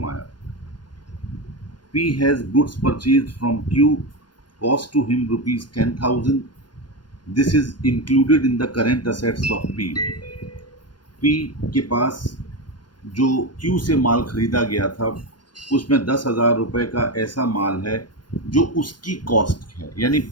P has goods purchased from Q, cost to him rupees 10,000. This is included in the current assets of P. P के पास जो Q से माल खरीदा गया था उसमें 10,000 रुपये का ऐसा माल है जो उसकी कॉस्ट है, यानी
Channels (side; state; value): right; late; 0.71 ms